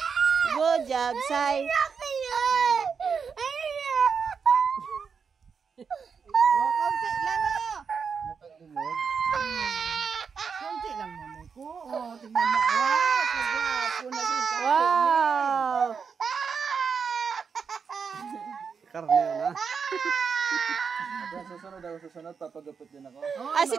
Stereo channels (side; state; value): left; quieter; 6.0 dB